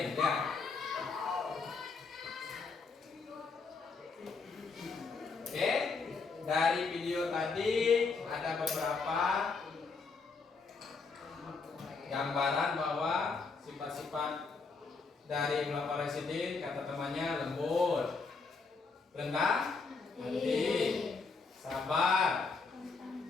ya. Oke, dari video tadi ada beberapa gambaran bahwa sifat-sifat dari Khulafaur Rasyidin, kata temannya lembut, rendah hati, sabar,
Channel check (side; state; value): right; quieter; 4.5 dB